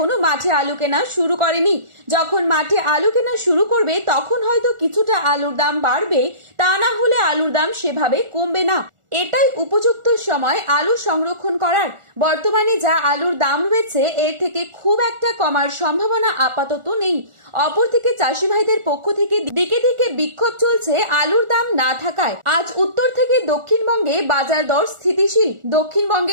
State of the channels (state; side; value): late; left; 1.4 ms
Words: মাঠে আলু কেনা শুরু করেনি। যখন মাঠে আলু কেনা শুরু করবে তখন হয়তো কিছুটা আলুর দাম বাড়বে, তা না হলে আলুর দাম সেভাবে কমবে না। এটাই উপযুক্ত সময় আলু সংরক্ষণ করার। বর্তমানে যা আলুর দাম রয়েছে এর থেকে খুব একটা কমার সম্ভাবনা আপাতত নেই। অপরদিকে চাষি ভাইদের পক্ষ থেকে দিকে দিকে বিক্ষোভ চলছে আলুর দাম না থাকায়। আজ উত্তর থেকে দক্ষিণবঙ্গে বাজার দর স্থিতিশীল।